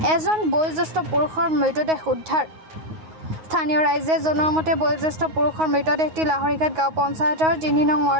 এজন বয়োজ্যেষ্ঠ পুৰুষৰ মৃতদেহ উদ্ধাৰ। স্থানীয় ৰাইজে জনোৱা মতে বয়োজ্যেষ্ঠ পুৰুষৰ মৃতদেহটি লাহৰীঘাট গাঁও পঞ্চায়তৰ ৩ নং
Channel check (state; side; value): late; left; 9.5 ms